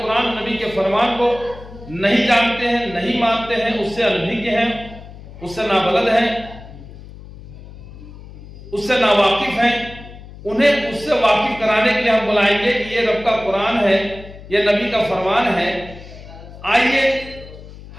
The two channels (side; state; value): left; noise; hum, 16 dB below the sound